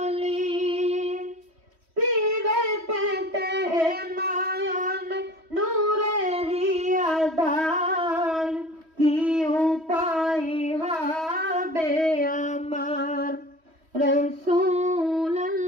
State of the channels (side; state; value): left; late; 3.1 ms